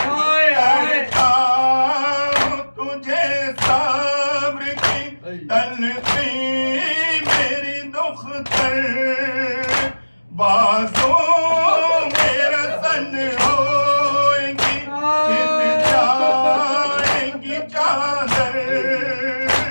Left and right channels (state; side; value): inverted; both; correlation -1.00